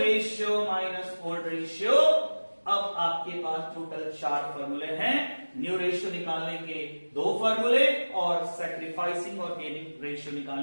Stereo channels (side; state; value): both; inverted; correlation -1.00